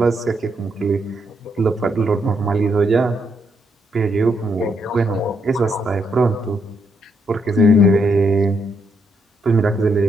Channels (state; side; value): normal; both; correlation 0.77